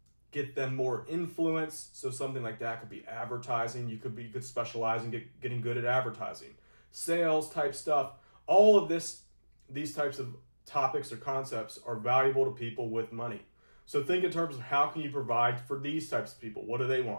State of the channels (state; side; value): inverted; both; correlation -1.00